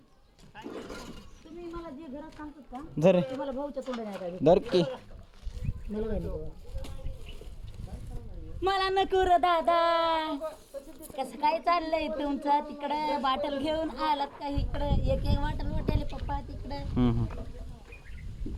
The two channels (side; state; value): both; identical; correlation 1.00